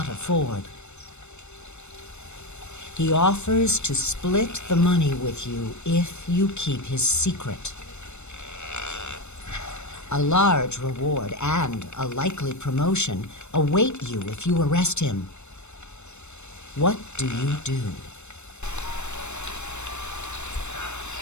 afford. He offers to split the money with you if you keep his secret. A large reward and a likely promotion await you if you arrest him. What do you do?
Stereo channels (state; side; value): late; right; 0.82 ms